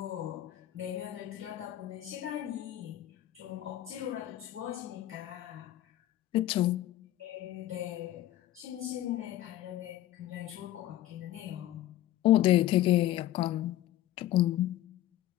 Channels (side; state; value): right; quieter; 13.7 dB